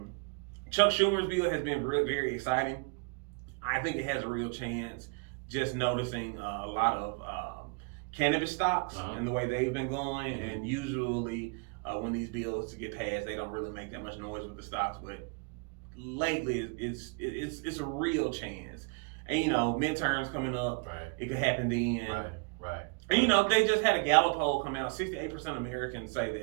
Chuck Schumer's bill has been very exciting. I think it has a real chance. Just noticing a lot of cannabis stocks and the way they've been going, and usually when these bills get passed, they don't really make that much noise with the stocks. But lately, it's a real chance. And midterms coming up, it could happen then. Right. And they just had a Gallup poll come out. 68% of Americans say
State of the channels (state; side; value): quieter; left; 32.4 dB